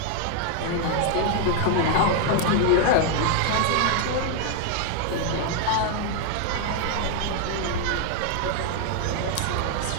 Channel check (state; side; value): different; both; correlation 0.00